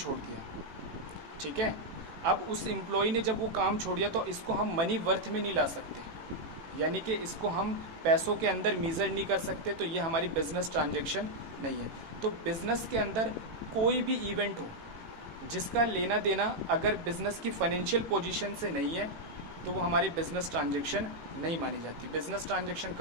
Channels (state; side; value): late; left; 18 ms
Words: दिया। ठीक है, अब उस एम्प्लॉय ने जब वो काम छोड़ दिया तो इसको हम मनी वर्थ में नहीं ला सकते, यानी कि इसको हम पैसों के अंदर मेजर नहीं कर सकते, तो ये हमारी बिजनेस ट्रांजेक्शन नहीं है। तो बिजनेस के अंदर कोई भी इवेंट हो जिसका लेना देना अगर बिजनेस की फाइनेंशियल पोजीशन से नहीं है तो वो हमारी बिजनेस ट्रांजेक्शन नहीं मानी जाती। बिजनेस ट्रांजेक्शन